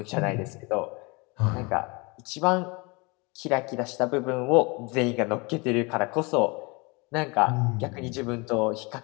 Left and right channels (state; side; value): quieter; right; 27.8 dB